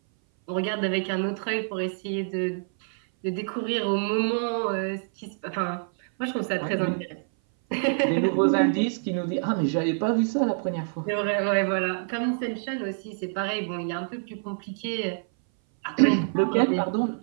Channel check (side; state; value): left; silent; 58 dB below the other